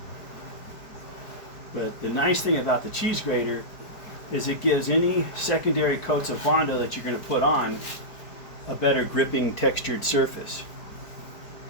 But the nice thing about the cheese grater is it gives any secondary coats of Bondo that you're going to put on a better gripping textured surface.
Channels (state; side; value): late; right; 4.7 ms